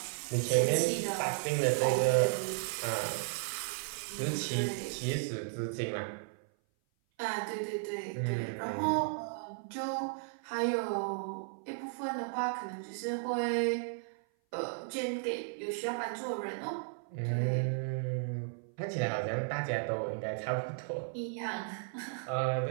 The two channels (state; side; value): silent; left; 55 dB below the other